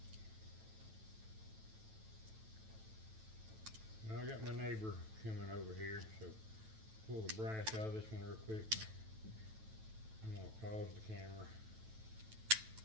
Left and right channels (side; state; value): left; late; 9.1 ms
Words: Now I got my neighbor coming over here, so pull the brass out of this one real quick. I'm gonna pause the camera